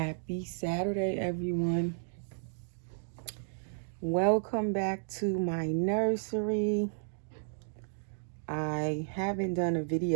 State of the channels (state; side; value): silent; left; digital silence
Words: Saturday, everyone. Welcome back to my nursery. I haven't done a